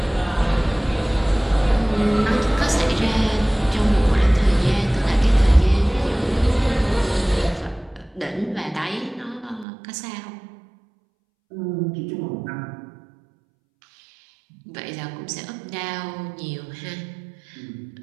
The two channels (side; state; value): left; drops out; at 9.7 s